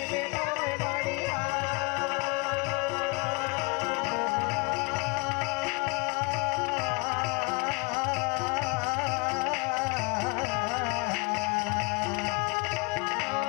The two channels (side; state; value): right; quieter; 29.4 dB